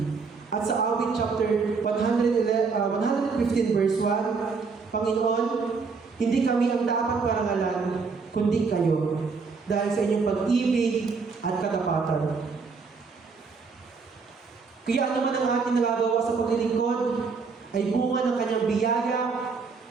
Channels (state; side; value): quieter; left; 4.9 dB